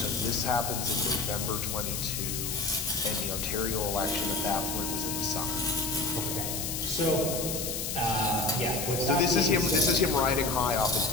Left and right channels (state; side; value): noise; left; hiss, 3 dB below the sound